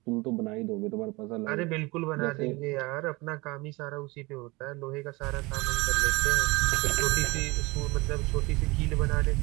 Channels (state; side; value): quieter; left; 24.0 dB